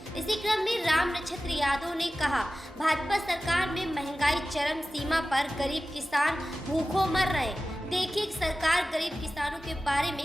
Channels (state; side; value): normal; both; correlation 0.95